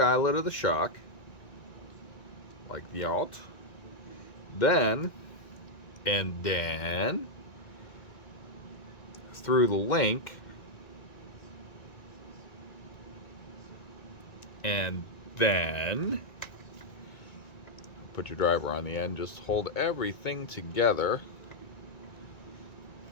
of the shock, like the alt. Then, and then, through the link, and then, put your driver on the end, just hold everything together.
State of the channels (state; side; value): late; right; 1.9 ms